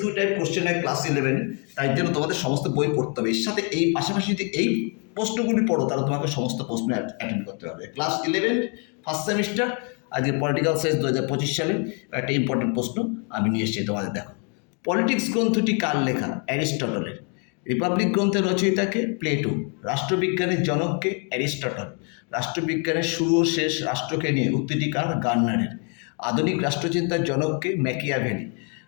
টাইপ কোশ্চেন হয় ক্লাস 11, তাই জন্য তোমাদের সমস্ত বই পড়তে হবে। এর সাথে এই পাশাপাশি যদি এই প্রশ্নগুলি পড়ো তাহলে তোমাকে সমস্ত প্রশ্ন অ্যাটেন্ড করতে হবে। ক্লাস 11 ফার্স্ট সেমিস্টার, আজকে পলিটিক্যাল সায়েন্স 2025 সালে একটা ইম্পর্টেন্ট প্রশ্ন আমি নিয়ে এসেছি তোমাদের। দেখো, পলিটিক্স গ্রন্থটি কার লেখা? অ্যারিস্টটলের। রিপাবলিক গ্রন্থের রচয়িতাকে? প্লেটো। রাষ্ট্রবিজ্ঞানের জনককে? অ্যারিস্টটল। রাষ্ট্রবিজ্ঞানের শুরু ও শেষ রাষ্ট্রকে নিয়ে উক্তিটি কার? গার্নারের। আধুনিক রাষ্ট্রচিন্তার জনককে? ম্যাকিয়াভেলি।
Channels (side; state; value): right; quieter; 38.0 dB